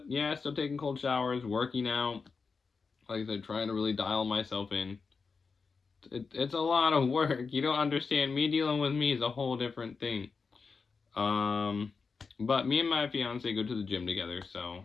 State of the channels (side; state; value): right; quieter; 4.9 dB